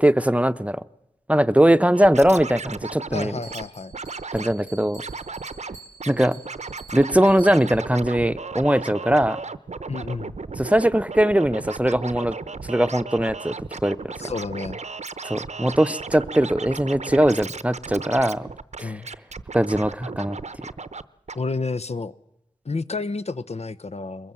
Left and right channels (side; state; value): both; normal; correlation 0.92